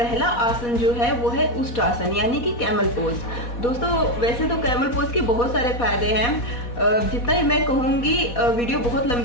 आसन जो है वो है उष्ट्रासन यानी कि कैमल पोज। दोस्तों, वैसे तो कैमल पोज के बहुत सारे फायदे हैं, जितना ही मैं कहूँगी वीडियो बहुत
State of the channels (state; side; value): late; right; 4.2 ms